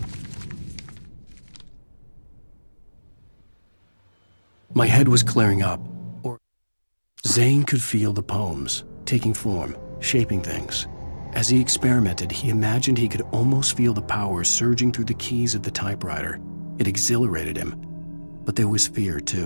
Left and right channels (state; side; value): inverted; both; correlation -1.00